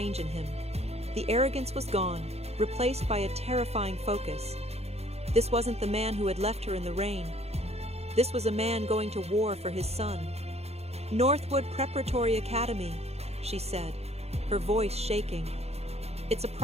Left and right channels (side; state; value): left; late; 0.30 ms